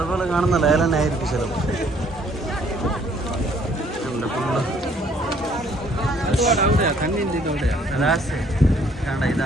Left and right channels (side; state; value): both; normal; correlation 0.62